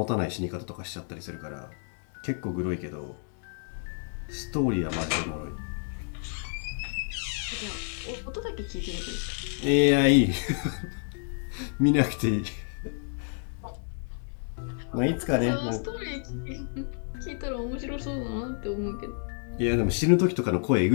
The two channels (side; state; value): right; silent; 58 dB below the other